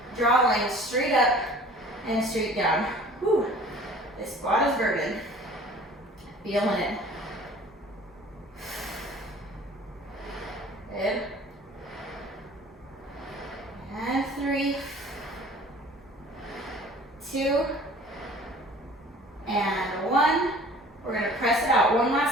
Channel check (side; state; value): both; normal; correlation 0.48